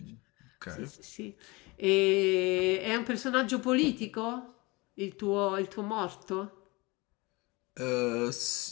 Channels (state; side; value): quieter; right; 24.7 dB